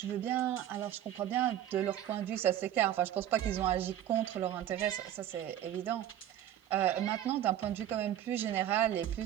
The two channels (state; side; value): quieter; left; 11.5 dB